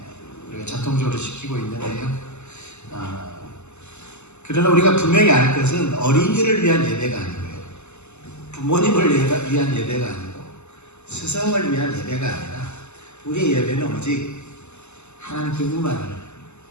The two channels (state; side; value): late; right; 0.82 ms